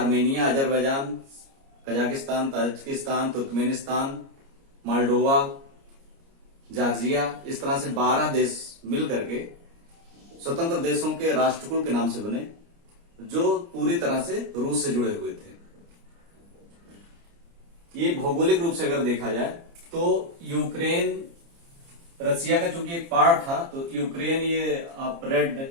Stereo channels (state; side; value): late; left; 29 ms